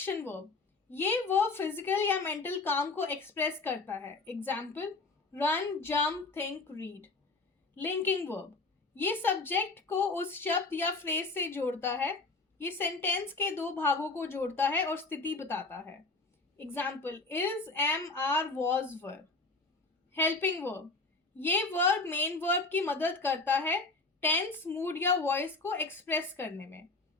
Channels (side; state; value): right; quieter; 3.5 dB